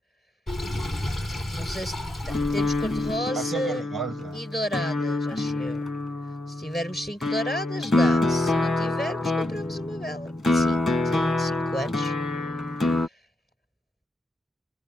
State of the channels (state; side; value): normal; both; correlation 0.82